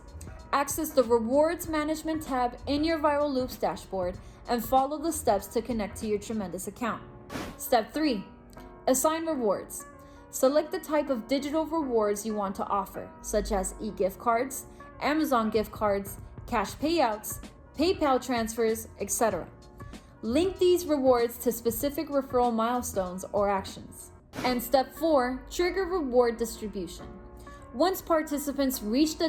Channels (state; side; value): identical; both; correlation 1.00